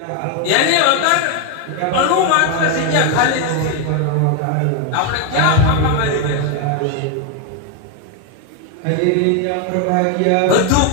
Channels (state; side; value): different; both; correlation 0.01